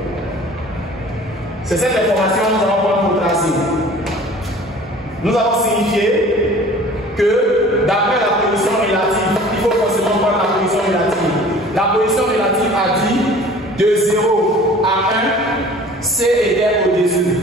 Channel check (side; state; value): both; normal; correlation 0.47